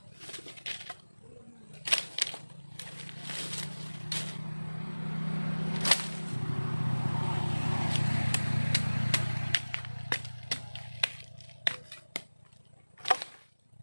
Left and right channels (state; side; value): inverted; both; correlation -1.00